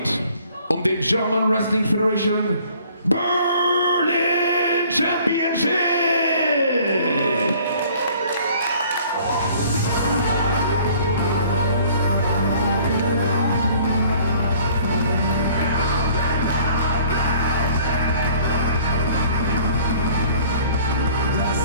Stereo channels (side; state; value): both; inverted; correlation -0.54